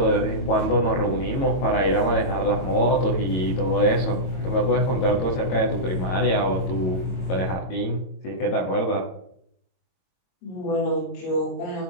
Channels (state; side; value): late; right; 22 ms